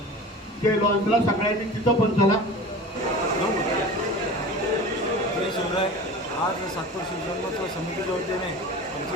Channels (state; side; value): normal; both; correlation 0.36